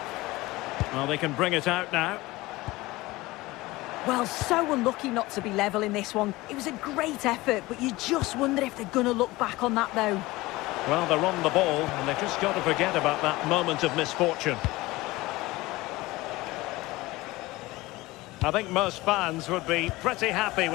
Well, they can bring it out now. Well, so unlucky not to be level in this one. It was a great effort, but you just wonder if they're going to look back on that, though. Well, they're on the ball, and they've just got to forget about that moment of misfortune. I think most fans would be pretty happy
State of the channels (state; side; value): quieter; right; 20.0 dB